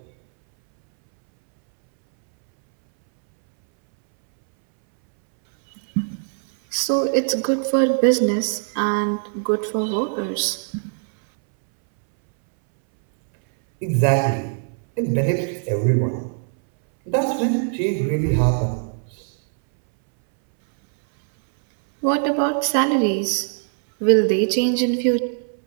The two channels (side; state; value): left; silent; 63 dB below the other